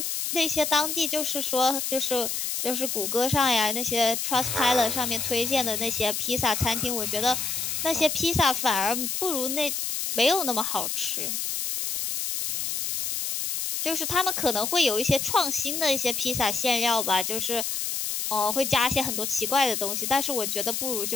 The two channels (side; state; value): left; noise; hiss, 2 dB below the sound